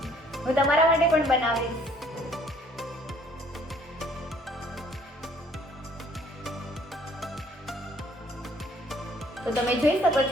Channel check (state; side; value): normal; both; correlation 0.59